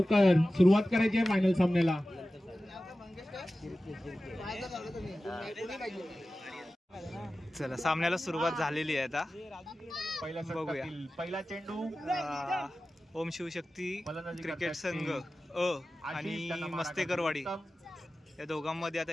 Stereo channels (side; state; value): both; normal; correlation 0.95